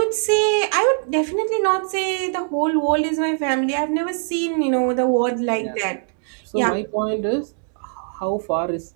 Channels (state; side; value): silent; left; 64 dB below the other